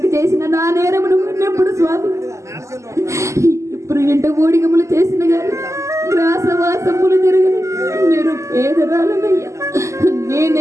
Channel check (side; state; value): left; late; 0.14 ms